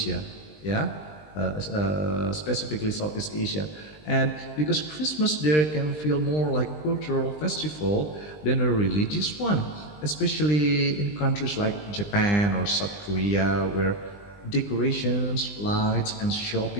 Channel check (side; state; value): right; late; 20 ms